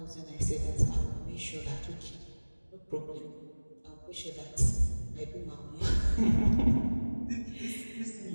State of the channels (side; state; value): both; inverted; correlation -1.00